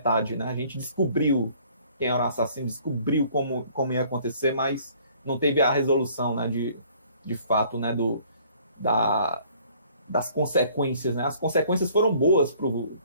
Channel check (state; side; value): inverted; both; correlation -0.57